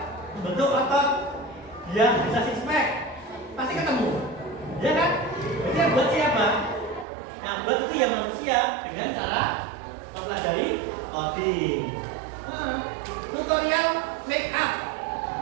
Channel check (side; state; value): left; drops out; at 7.1 s